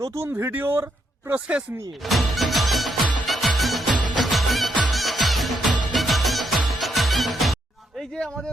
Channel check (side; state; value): both; normal; correlation 0.77